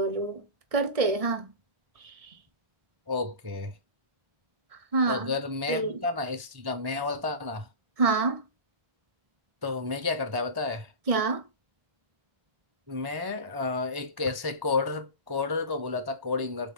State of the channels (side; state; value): left; late; 1.1 ms